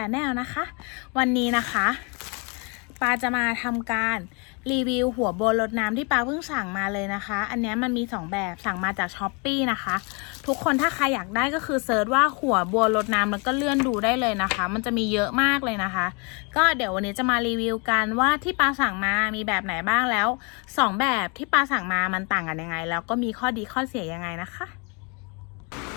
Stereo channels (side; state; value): right; quieter; 32.6 dB